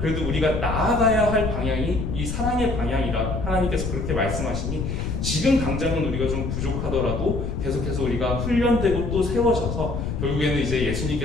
우리가 나아가야 할 방향이 이 사랑의 방향이라 하나님께서 그렇게 말씀하시니 지금 당장은 우리가 좀 부족하더라도 계속해서 우리가 훈련되고 또 세워져서 결국에는 이제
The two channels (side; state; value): left; noise; rumble, 3 dB below the sound